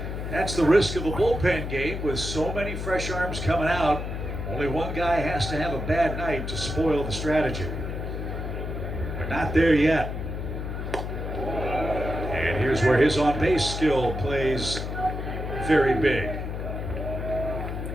That's the risk of a bullpen game with so many fresh arms coming out. Only one guy has to have a bad night to spoil the strategy. We're not there yet. And here's where his on-base skill plays very big.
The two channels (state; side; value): noise; left; hum, 5 dB below the sound